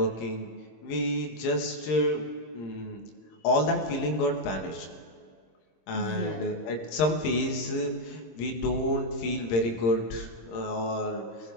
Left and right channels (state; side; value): late; right; 26 ms